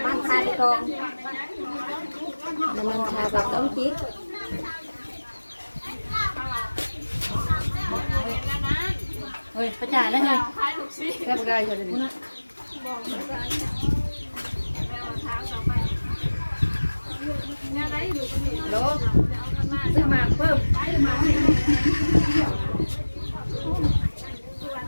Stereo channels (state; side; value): inverted; both; correlation -1.00